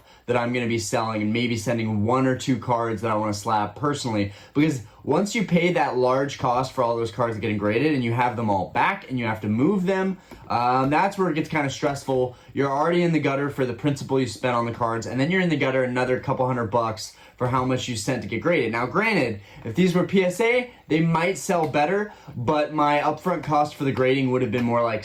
that I'm going to be selling, and maybe sending 1 or 2 cards that I want to slab personally, because once you pay that large cost for all those cards getting graded and you have them all back and you have to move them, that's where it gets kind of stressful. You're already in the gutter for the principal you spent on the cards, and then you're in the gutter another couple $100 for how much you sent to get graded. Now, granted, if these were PSA, they might sell better, but my upfront cost for the grading would have been more like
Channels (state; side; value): identical; both; correlation 1.00